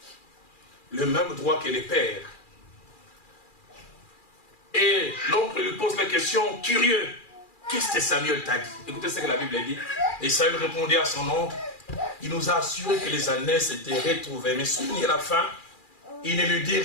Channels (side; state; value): right; late; 2.4 ms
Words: le même droit que les pères. Et l'oncle lui pose la question, curieux, qu'est-ce que Samuel t'a dit? Écoutez ce que la Bible dit. Et Samuel répondit à son oncle, il nous a assuré que les années s'étaient retrouvées. Mais souvenez la fin, il ne lui dit